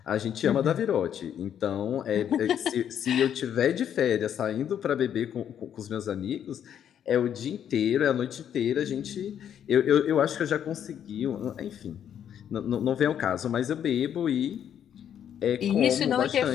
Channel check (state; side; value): quieter; right; 9.3 dB